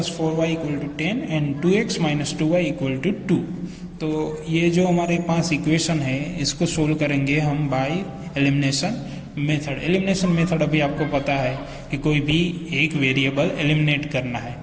4y equal to 10 and 2x minus 2y equal to 2। तो ये जो हमारे पास इक्वेशन है इसको सोल्व करेंगे हम bye elimination method. Elimination method अभी आपको पता है कि कोई भी एक वेरिएबल एलिमिनेट करना है।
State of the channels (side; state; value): both; identical; correlation 1.00